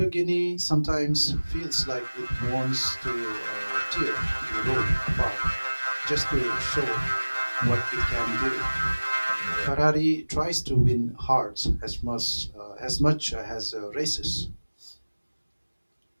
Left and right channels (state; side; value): inverted; both; correlation -1.00